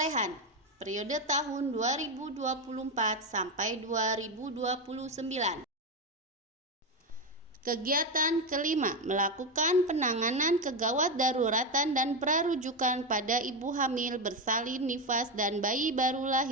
periode tahun 2024 sampai 2029. Kegiatan kelima, melakukan penanganan kegawat daruratan dan prarujukan pada ibu hamil bersalin nifas dan bayi baru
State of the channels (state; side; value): normal; both; correlation 0.11